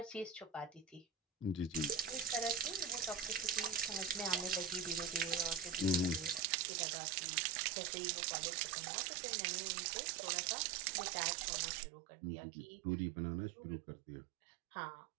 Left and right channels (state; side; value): drops out; left; at 6.4 s